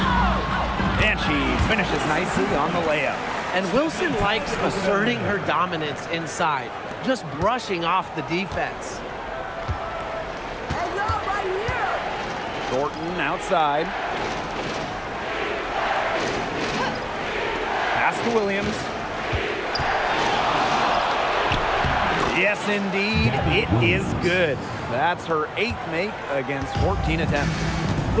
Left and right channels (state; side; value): identical; both; correlation 1.00